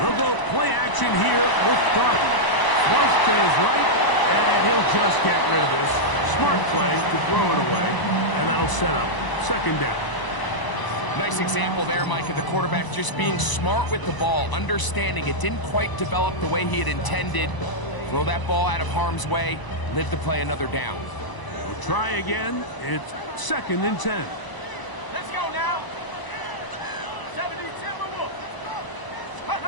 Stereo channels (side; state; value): right; late; 1.0 ms